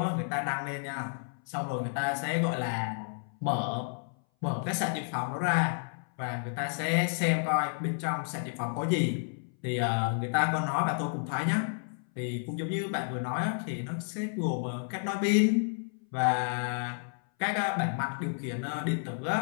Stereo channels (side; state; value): right; silent; 57 dB below the other